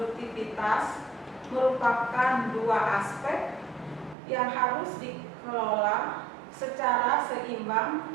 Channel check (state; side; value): drops out; left; at 4.2 s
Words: merupakan dua aspek yang harus dikelola secara seimbang